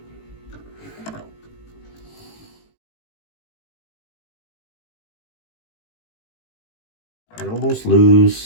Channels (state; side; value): late; right; 18 ms